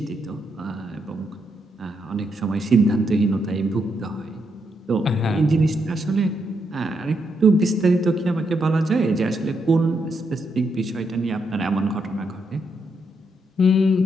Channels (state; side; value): normal; both; correlation 0.79